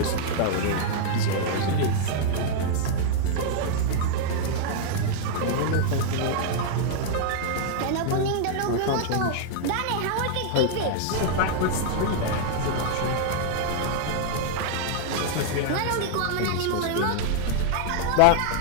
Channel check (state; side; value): different; both; correlation -0.01